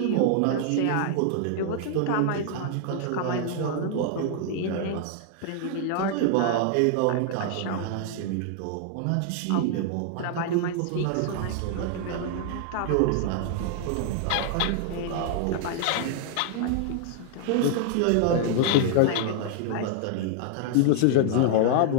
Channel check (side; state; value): both; different; correlation 0.00